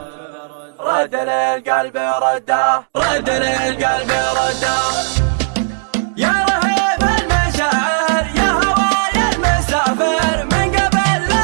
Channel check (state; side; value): silent; left; 69 dB below the other